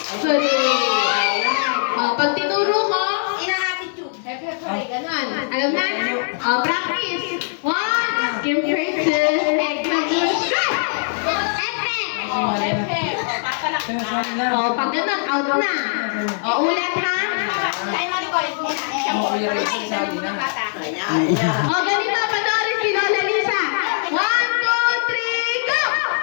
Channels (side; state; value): right; silent; 65 dB below the other